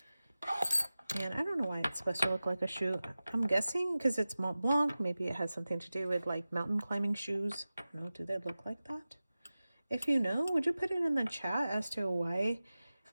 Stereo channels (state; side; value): inverted; both; correlation -0.96